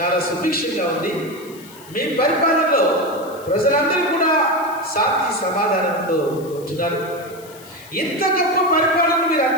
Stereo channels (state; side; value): noise; left; hiss, 21 dB below the sound